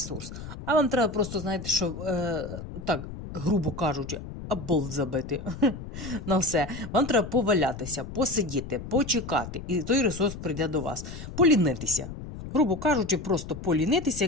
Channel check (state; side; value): noise; left; rumble, 10 dB below the sound